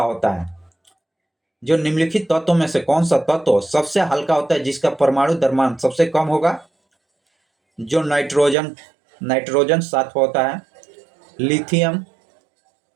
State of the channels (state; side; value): drops out; left; at 8.6 s